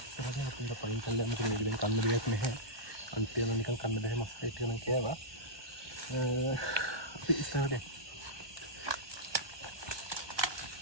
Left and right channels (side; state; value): left; late; 1.2 ms